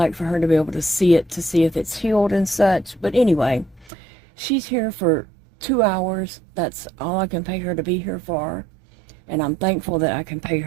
for her to be able to see it, to see if it's healed and such. But anyway, she's here for 2 hours. That's all I can pay her to be here for, and I'm thankful that I can pay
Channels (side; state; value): left; drops out; at 3.9 s